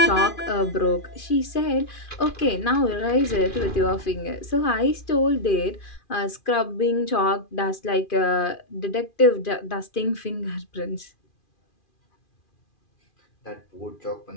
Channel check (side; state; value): right; late; 2.4 ms